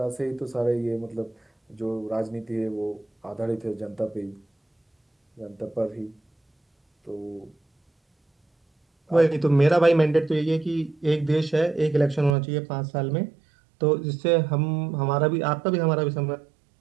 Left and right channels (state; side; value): drops out; left; at 12.4 s